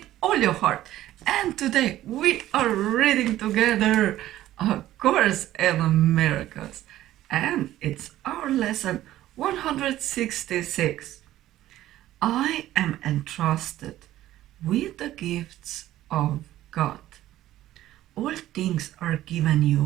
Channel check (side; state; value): left; quieter; 14.1 dB